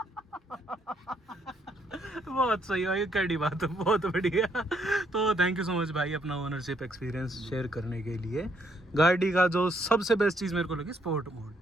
बहुत सही है, कड़ी बात है, बहुत बढ़िया। तो थैंक यू सो मच भाई अपना ओनरशिप एक्सपीरियंस शेयर करने के लिए। गाड़ी का जो सबसे बेस्ट चीज़ मेरे को लगी स्पोर्ट मोड,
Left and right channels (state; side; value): normal; both; correlation 0.71